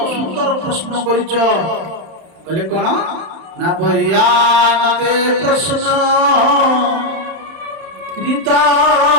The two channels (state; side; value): late; left; 31 ms